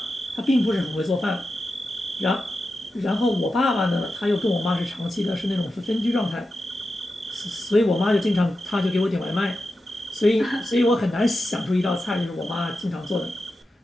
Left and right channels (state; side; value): normal; both; correlation 0.91